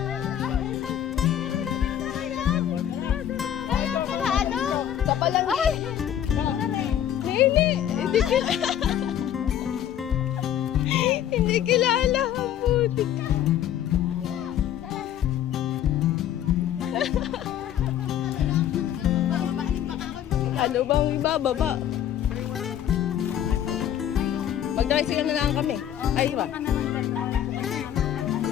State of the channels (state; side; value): quieter; right; 10.6 dB